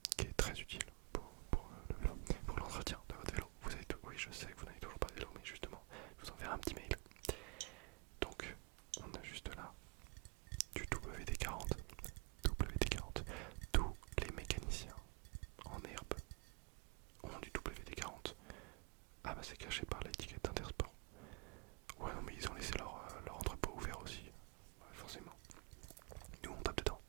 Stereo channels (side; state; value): left; quieter; 30.2 dB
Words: qui est très utile pour le vélo, pour l'entretien de votre vélo. Vous avez tout, oui, je sais que vous n'avez toujours pas de vélo, mais justement, je vous enverrai un petit mail. Donc, on a juste là du WD-40. WD-40. Tous les mécaniciens en herbe ont du WD-40. Ah bah c'est caché par l'étiquette Intersport. Ouais non mais ils ont laissé leur entrepôt ouvert aussi. Ouais, forcément. Nous on tape dedans